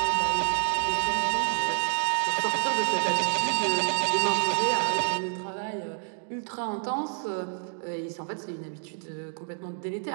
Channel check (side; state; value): left; silent; 59 dB below the other